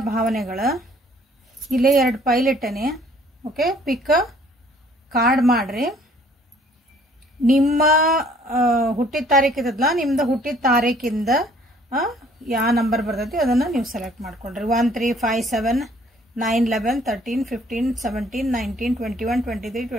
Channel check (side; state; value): both; normal; correlation 0.58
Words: ಭಾವನೆಗಳು ಇಲ್ಲೇ ಎರಡು ಫೈಲ್ ಇಟ್ಟನೆ ಓಕೆ ಪಿಕ್ ಕಾರ್ಡ್ ಮಾಡ್ರಿ ನಿಮ್ಮ ಹುಟ್ಟಿದ ತಾರೀಕು ಇದ್ದಲ್ಲ ನಿಮ್ಮದು ಹುಟ್ಟಿದ ತಾರೀಕಿಂದ ಯಾವ ನಂಬರ್ ಬರ್ತೈತಿ ಅದನ್ನ ನೀವು ಸೆಲೆಕ್ಟ್ ಮಾಡ್ಕೊಂಡ್ರಿ 1 3 5 7 9 11 13 15 17 19 21 23